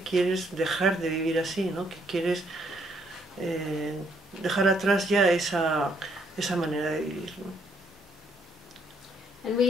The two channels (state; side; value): normal; both; correlation 0.70